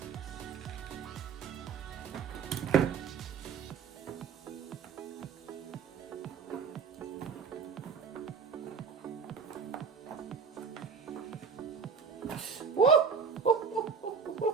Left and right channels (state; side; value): quieter; left; 5.9 dB